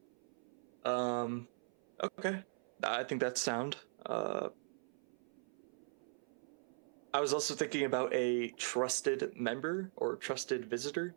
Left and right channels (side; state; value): left; silent; 51 dB below the other